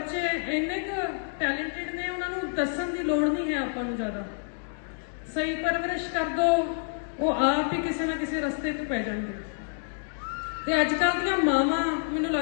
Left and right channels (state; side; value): silent; right; digital silence